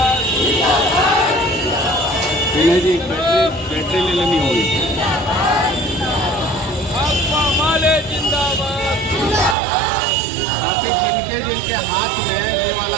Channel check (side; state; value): left; drops out; at 9.6 s